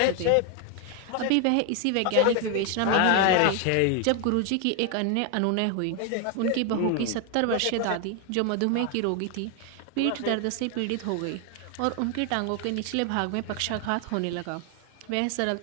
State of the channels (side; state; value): both; different; correlation 0.01